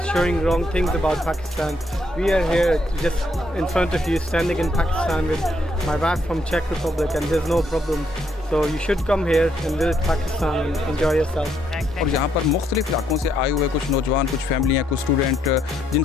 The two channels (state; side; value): normal; both; correlation 0.73